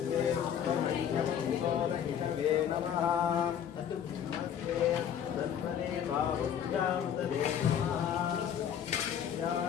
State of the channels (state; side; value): quieter; right; 8.9 dB